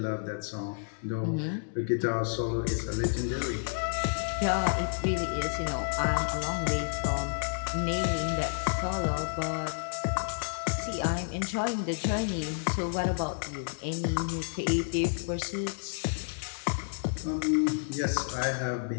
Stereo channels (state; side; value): silent; right; digital silence